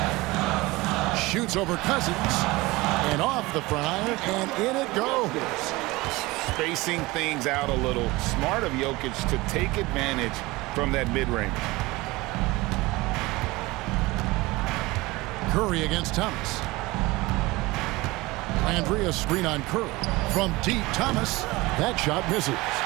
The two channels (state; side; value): quieter; left; 21.4 dB